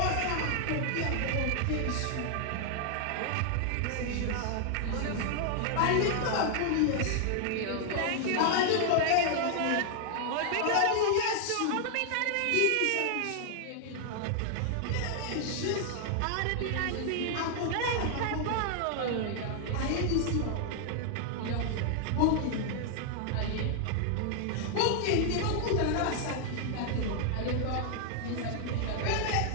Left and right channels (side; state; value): both; different; correlation 0.00